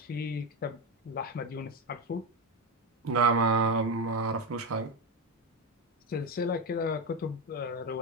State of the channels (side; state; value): both; normal; correlation 0.12